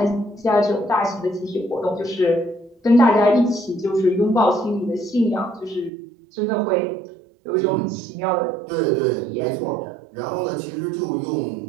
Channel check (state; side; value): drops out; left; at 5.9 s